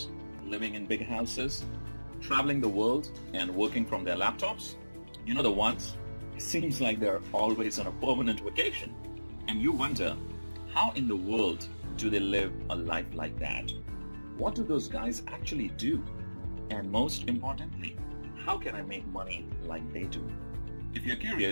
living in big houses, traveling the world and working from their laptops? You know the ones? It seems like they're always on a permanent vacation. And you wonder, how in the world do they live a life like that? What do those guys actually do? And most importantly, how can I make money like they do? If you're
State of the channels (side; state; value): both; inverted; correlation -1.00